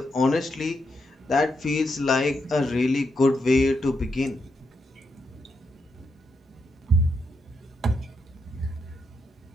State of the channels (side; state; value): both; normal; correlation 0.81